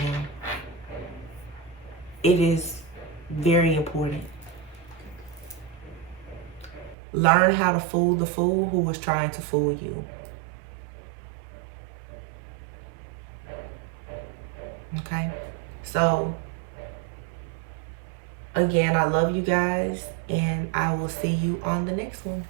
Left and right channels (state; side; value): drops out; left; at 7.0 s